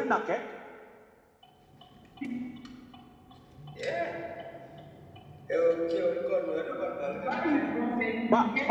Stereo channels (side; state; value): both; identical; correlation 1.00